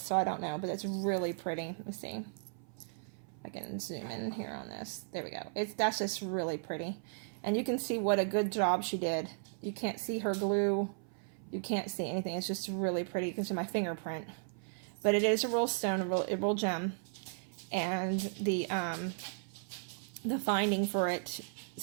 so I don't know, but it's really pretty. Let me see. I can zoom in here on this. There we go. That's just really pretty. And you can see what a good job she did. You can't see her glue. You can't see anything. It's just really pretty. You can see my fingerprint. But it is a real stone, a real gem. And the finding for it,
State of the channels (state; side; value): silent; left; 54 dB below the other